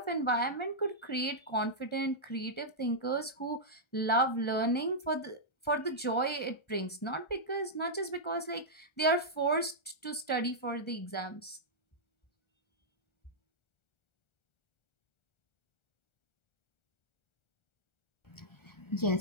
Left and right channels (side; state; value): right; late; 1.4 ms